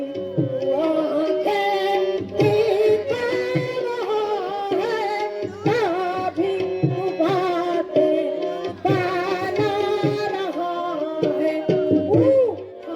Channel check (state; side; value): identical; both; correlation 1.00